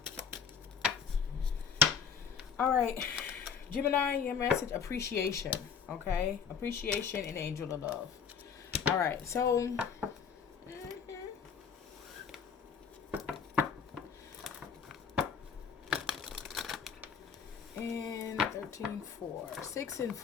All right, Gemini, your message, appreciation, okay? Appreciation and angel of love. All right, so and 13, 4, 6 and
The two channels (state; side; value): quieter; right; 6.7 dB